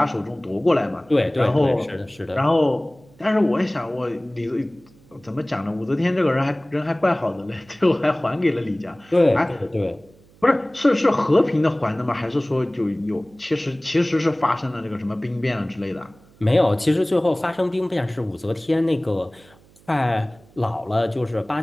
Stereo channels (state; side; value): noise; right; hum, 28 dB below the sound